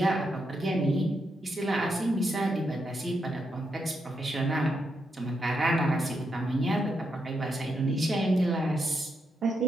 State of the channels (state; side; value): normal; both; correlation 0.82